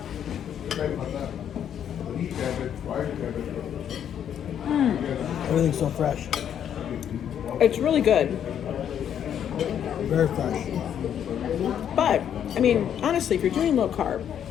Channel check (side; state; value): right; quieter; 9.3 dB